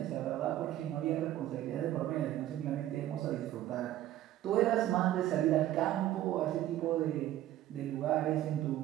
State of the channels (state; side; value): quieter; left; 13.5 dB